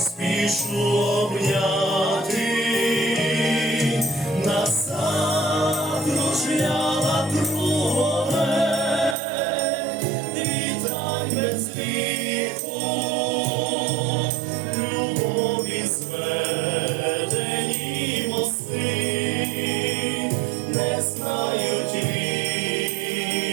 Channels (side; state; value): left; drops out; at 9.2 s